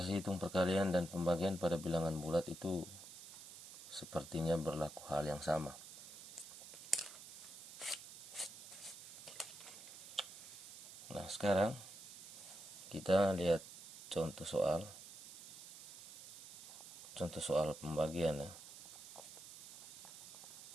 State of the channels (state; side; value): noise; right; hiss, 13 dB below the sound